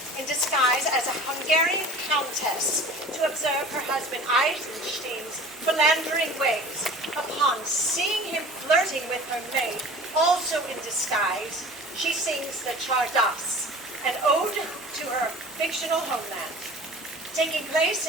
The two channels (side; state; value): both; normal; correlation 0.42